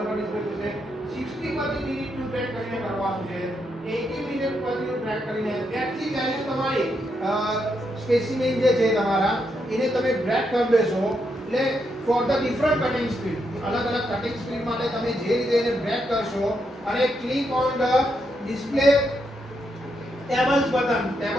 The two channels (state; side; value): normal; both; correlation 0.80